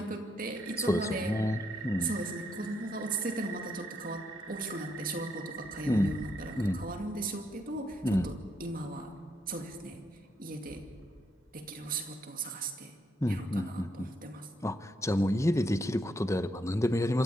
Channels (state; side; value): normal; both; correlation 0.77